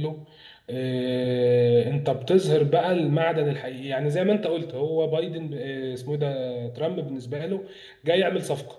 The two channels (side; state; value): both; identical; correlation 1.00